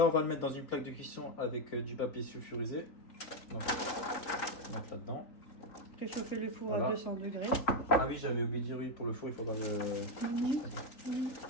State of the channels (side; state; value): right; late; 3.8 ms